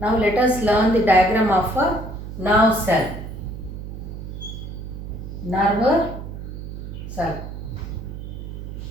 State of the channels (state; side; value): noise; right; hum, 9 dB below the sound